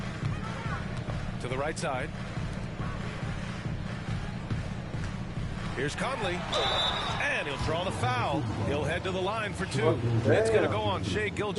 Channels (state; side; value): identical; both; correlation 1.00